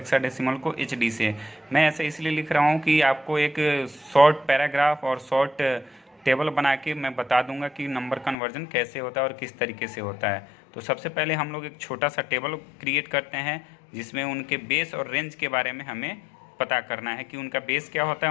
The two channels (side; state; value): right; drops out; at 8.3 s